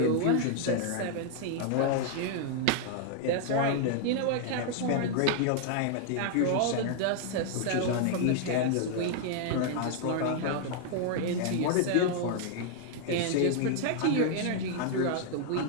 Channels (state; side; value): different; both; correlation 0.00